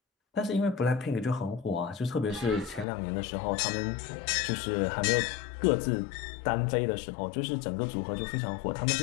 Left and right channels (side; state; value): right; drops out; at 2.9 s